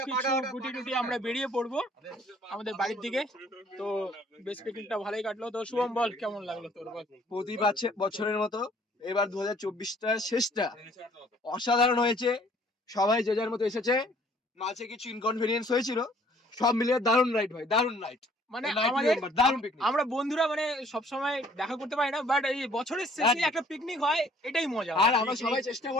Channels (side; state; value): both; normal; correlation 0.58